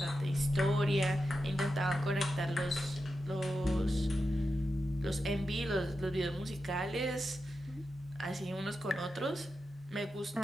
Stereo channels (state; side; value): normal; both; correlation 0.89